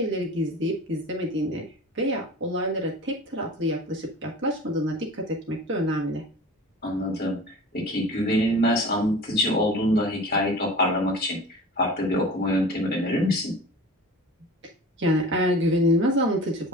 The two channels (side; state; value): both; normal; correlation 0.38